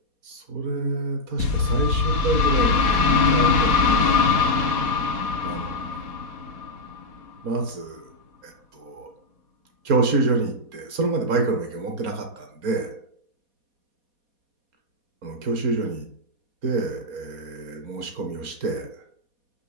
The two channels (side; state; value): left; late; 4.2 ms